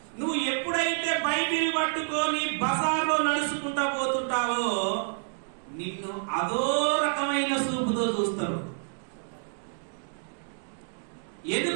నువ్వు ఎప్పుడైతే బైబిల్ పట్టుకొని బజార్లో నడుచుకుంటా పోతుంటావో నిన్ను అదో రకమైన చూపుతో చూస్తారు.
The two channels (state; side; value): silent; left; 59 dB below the other